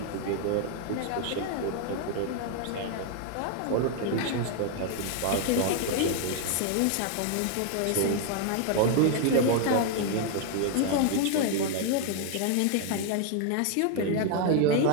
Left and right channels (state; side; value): different; both; correlation 0.00